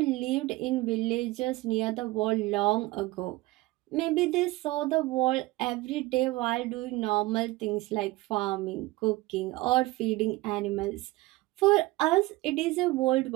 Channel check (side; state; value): left; quieter; 20.0 dB